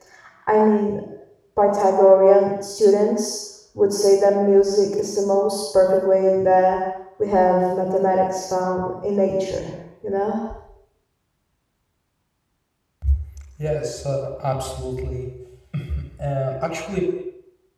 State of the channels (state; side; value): identical; both; correlation 1.00